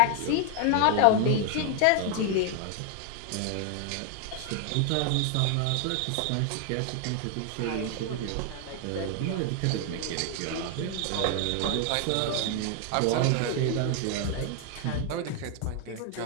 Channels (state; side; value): different; both; correlation 0.00